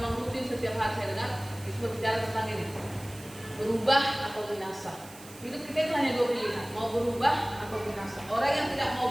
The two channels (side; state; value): right; noise; hiss, 19 dB below the sound